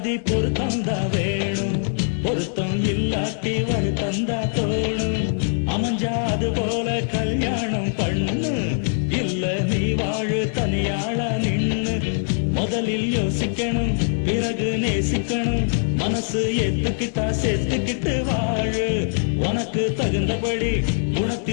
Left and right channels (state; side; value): silent; right; digital silence